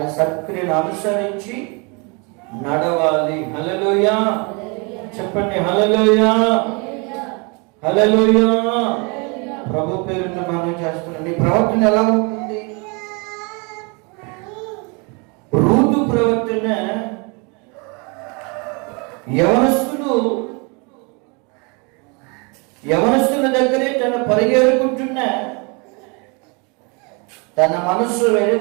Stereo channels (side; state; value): left; quieter; 31.6 dB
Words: సత్క్రియలు అనుసరించి నడవాలి. హల్లెలూయా చెప్పండి, హల్లెలూయా హల్లెలూయా. ప్రభు పేరుతో మనం చేస్తున్నాం. ఈ ప్రవర్తన ఎలా ఉంటుంది? రూతు ప్రవర్తన యవనస్తుల దగ్గరే తన పరిగెడుకుంటున్న తన మనస్సు వేరే,